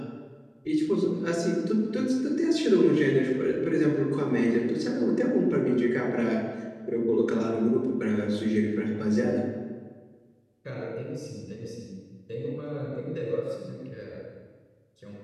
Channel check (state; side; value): identical; both; correlation 1.00